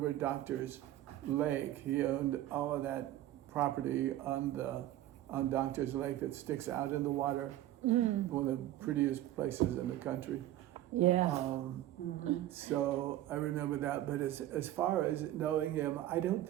Doctor's Lake. He owned all of that property on Doctor's Lake that sticks out in the water. One of the prettiest places in the country. Yeah. So I remember that, but as far as knowing him, I don't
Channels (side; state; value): left; quieter; 13.9 dB